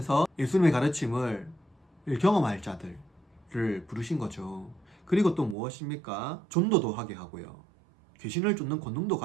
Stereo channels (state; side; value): drops out; left; at 5.6 s